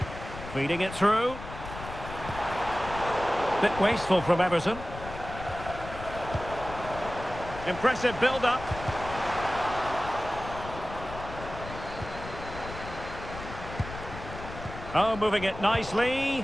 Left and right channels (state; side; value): noise; left; rumble, 11 dB below the sound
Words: Feeding it through. Bit wasteful from Everton. Impressive build-up. Oh, moving it